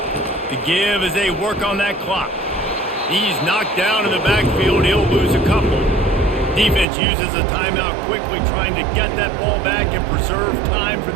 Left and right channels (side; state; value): left; drops out; at 6.9 s